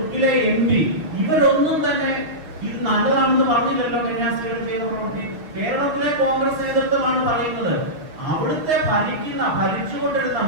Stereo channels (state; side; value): late; left; 6.6 ms